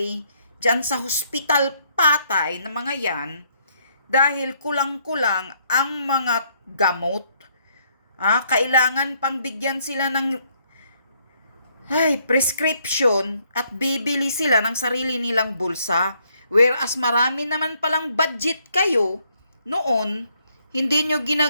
dyan sa hospital patay na mga yan dahil kulang-kulang ang mga gamot. Kailangan pang bigyan sila ng prescription at bibili sila ng sarili nilang bulsa. Whereas marami naman palang budget kayo noon, hindi nyo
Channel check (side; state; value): both; inverted; correlation -0.70